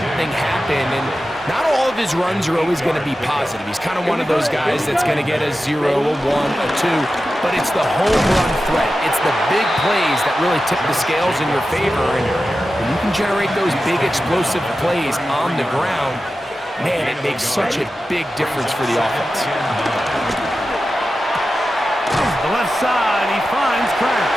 happen. And not all of his runs are always going to be positive. He's kind of one of those guys that's going to get a 0, a 1, a 2. But it's the home run threat. It's the big plays that really tip the scales in your favor. And when you can generate those big explosive plays on the ground, man, it makes such a big difference for the offense. The left side, he finds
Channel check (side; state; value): both; normal; correlation 0.93